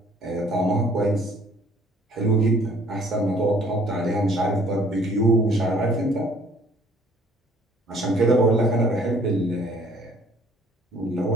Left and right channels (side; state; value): both; normal; correlation 0.58